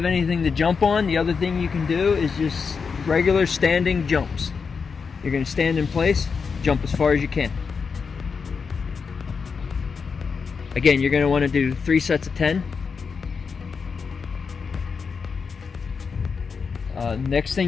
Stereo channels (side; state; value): right; quieter; 5.5 dB